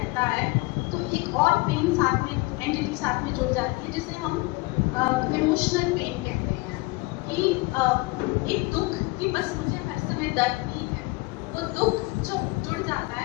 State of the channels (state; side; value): quieter; right; 23.2 dB